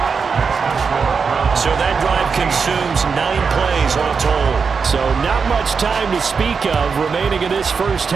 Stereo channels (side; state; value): left; quieter; 5.5 dB